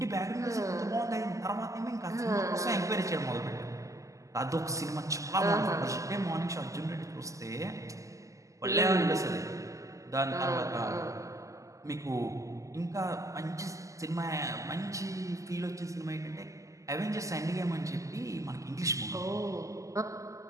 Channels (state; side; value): late; left; 0.16 ms